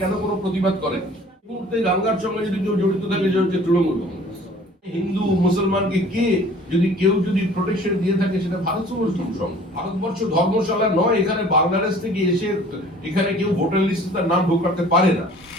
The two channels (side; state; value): both; normal; correlation 0.50